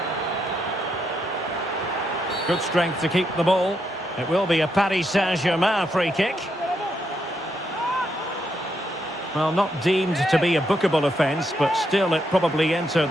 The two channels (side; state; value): both; normal; correlation 0.79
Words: Good strength to keep the ball. It will be a Paris Saint-Germain free kick. Well, not deemed to be a bookable offence, but still it probably entered